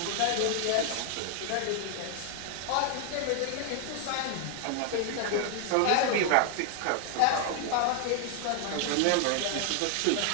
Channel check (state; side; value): different; both; correlation 0.00